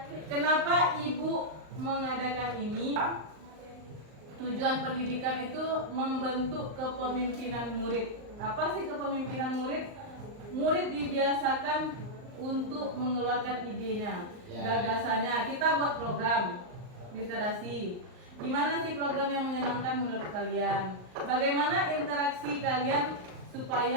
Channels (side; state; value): left; late; 38 ms